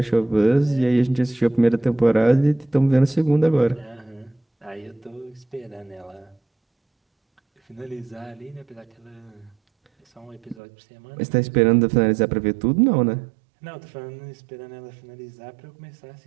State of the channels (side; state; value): left; drops out; at 10.6 s